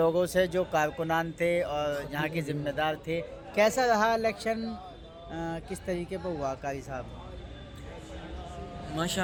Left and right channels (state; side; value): identical; both; correlation 1.00